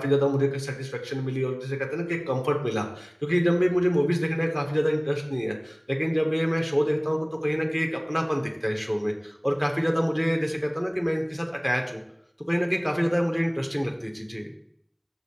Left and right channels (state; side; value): identical; both; correlation 1.00